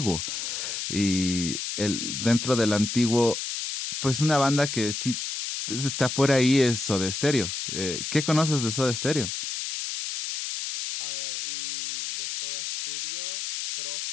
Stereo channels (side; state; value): left; noise; hiss, 4 dB below the sound